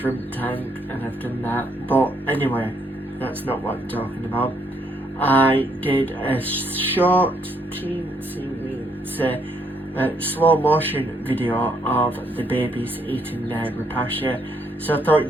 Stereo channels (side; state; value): both; normal; correlation 0.72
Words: tank and I've done that. But anyway, that's not what I'm talking about. I did a short slow motion video of the babies eating their Repasha, so I